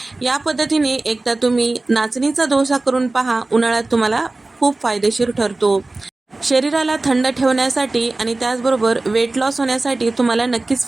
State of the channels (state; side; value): quieter; left; 3.1 dB